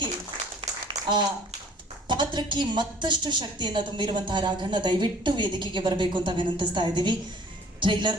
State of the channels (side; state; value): both; normal; correlation 0.52